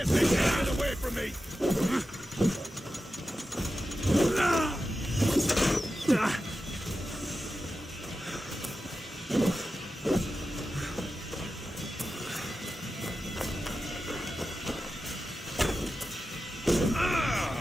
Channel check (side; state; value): both; normal; correlation 0.92